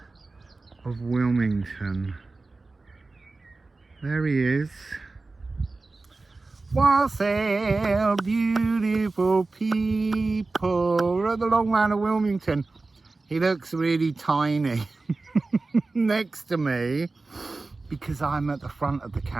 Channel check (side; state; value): left; quieter; 3.5 dB